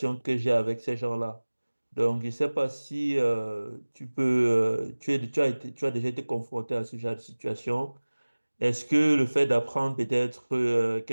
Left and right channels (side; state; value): both; inverted; correlation -1.00